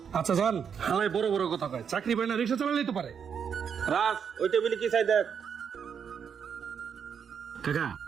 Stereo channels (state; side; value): quieter; left; 7.3 dB